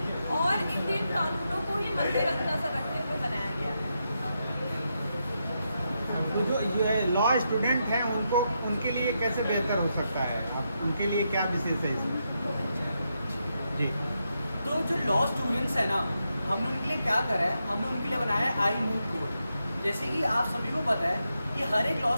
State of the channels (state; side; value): inverted; both; correlation -0.84